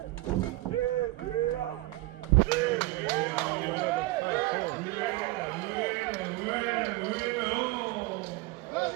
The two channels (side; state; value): left; quieter; 19.4 dB